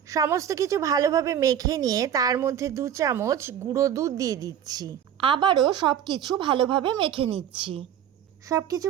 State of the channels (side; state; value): left; quieter; 9.6 dB